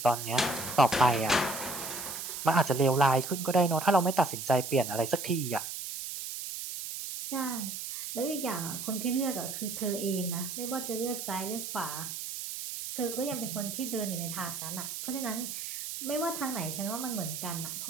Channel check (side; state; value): right; noise; hiss, 6 dB below the sound